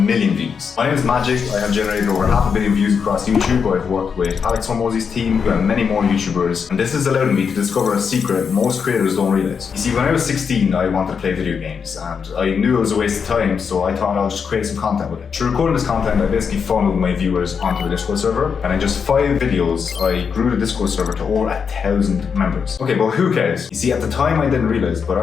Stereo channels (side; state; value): right; quieter; 6.3 dB